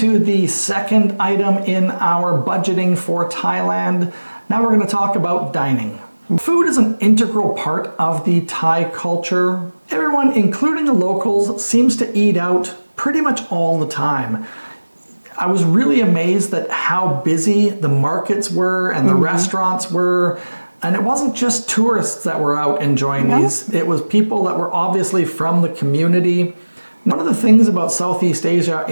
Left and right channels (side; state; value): both; inverted; correlation -1.00